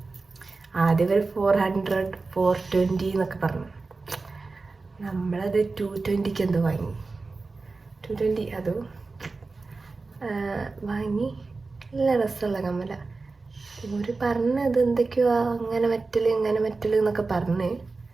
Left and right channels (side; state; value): left; quieter; 3.8 dB